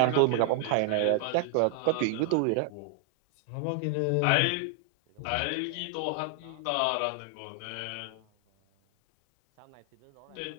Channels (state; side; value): different; both; correlation 0.00